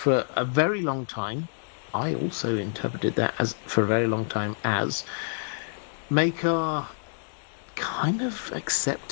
a very long time. I also interpreted that as for a very long time as Maekar kind of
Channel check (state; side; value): silent; right; digital silence